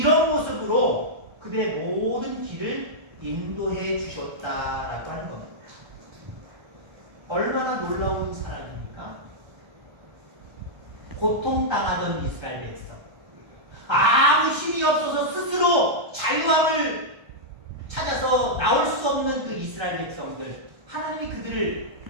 모습으로 그들의 모든 길을 인도해 주셨다라고 하는 겁니다. 얼마나 놀라운 사랑입니까? 고통당하던 이스라엘 백성, 아무 힘이 없어서 스스로 자유함을 찾아서 나올 수 없는 그 이스라엘 백성들, 하나님이 그들을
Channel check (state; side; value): late; left; 1.3 ms